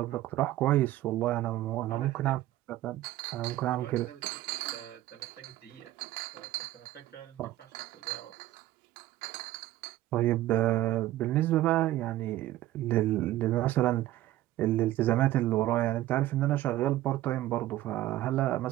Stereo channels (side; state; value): left; quieter; 14.9 dB